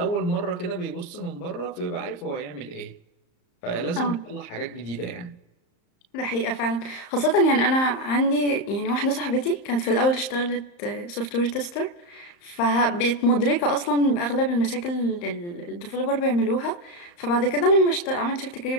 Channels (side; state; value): right; late; 35 ms